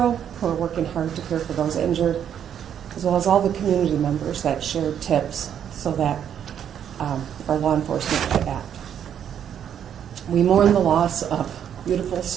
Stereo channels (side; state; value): left; quieter; 9.1 dB